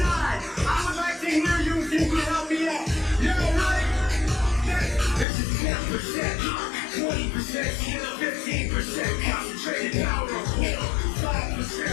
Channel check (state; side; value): drops out; right; at 5.2 s